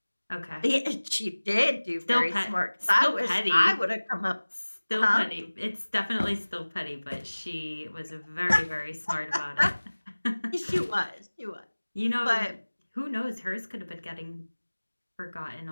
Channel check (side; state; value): both; inverted; correlation -1.00